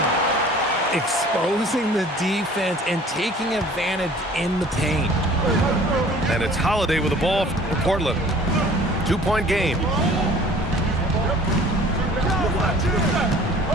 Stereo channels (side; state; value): both; normal; correlation 0.50